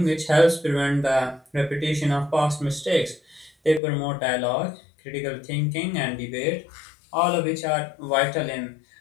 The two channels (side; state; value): right; drops out; at 3.8 s